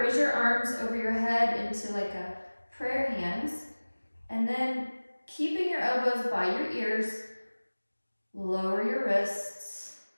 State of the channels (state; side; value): inverted; both; correlation -1.00